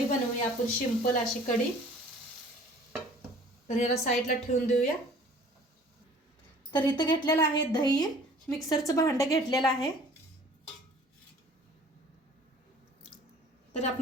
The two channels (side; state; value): both; normal; correlation 0.50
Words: बनवूया आपण, सिंपल अशी कढी. तर याला साईडला ठेवून देऊया. तर इथं घेतलेलं आहे दही, मिक्सरचं भांडं घेतलेलं आहे. तर